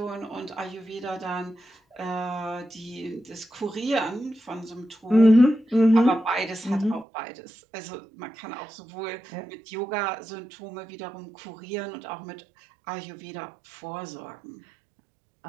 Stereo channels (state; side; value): drops out; left; at 7.1 s